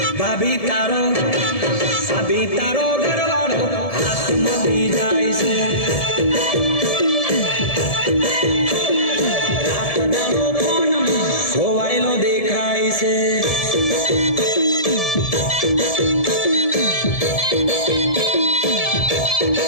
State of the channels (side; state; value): right; late; 1.7 ms